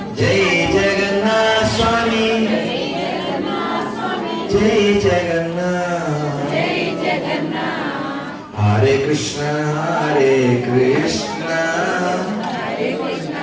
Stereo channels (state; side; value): identical; both; correlation 1.00